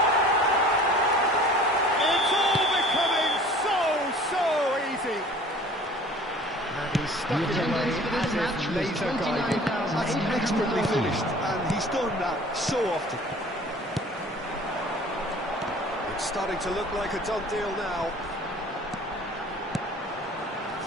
It's all becoming so easy. And he's stuck it away as if laser guided. That's expertly finished, and he He's done that so often. It's starting to look like a done deal now.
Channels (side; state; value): both; normal; correlation 0.47